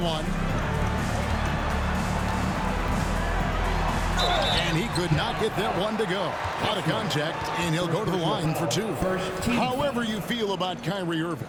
And he could not get that one to go. Out of contact, and he'll go to the line for 2. However you feel about Kyrie Irving,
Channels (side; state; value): both; identical; correlation 1.00